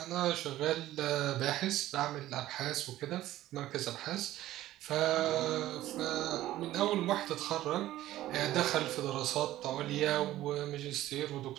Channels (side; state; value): left; quieter; 14.7 dB